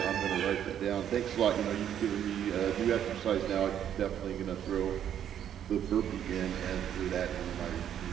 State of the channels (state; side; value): quieter; left; 9.8 dB